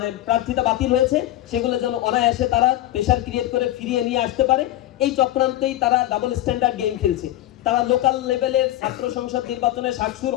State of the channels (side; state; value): right; quieter; 14.6 dB